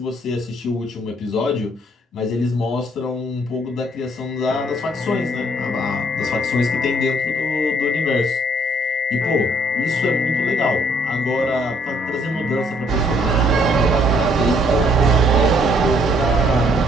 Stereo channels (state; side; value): normal; both; correlation 0.65